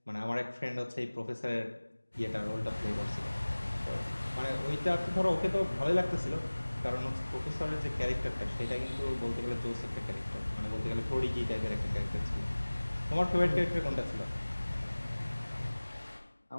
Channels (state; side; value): inverted; both; correlation -1.00